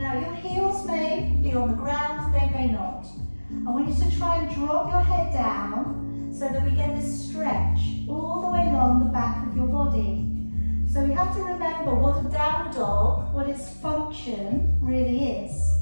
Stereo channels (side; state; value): both; inverted; correlation -1.00